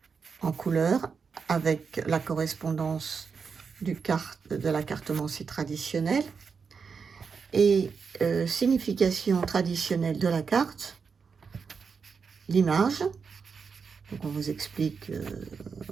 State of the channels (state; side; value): quieter; left; 5.6 dB